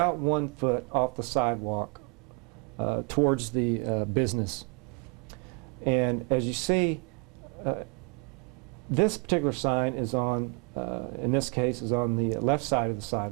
1 foot off the sidewalk towards the business. And as you see, this particular sign is on, in this case, is on the left side of the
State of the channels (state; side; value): quieter; left; 33.6 dB